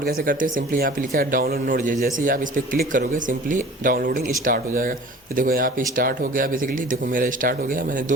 कैसे करते हैं। सिंपली यहाँ पे लिखा है डाउनलोड नोड जेएस। जैसे ही आप इस पर क्लिक करोगे सिंपली डाउनलोडिंग स्टार्ट हो जाएगा। तो देखो यहाँ पे स्टार्ट हो गया। बेसिकली देखो मेरा स्टार्ट हो गया, मैंने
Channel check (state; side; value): normal; both; correlation 0.44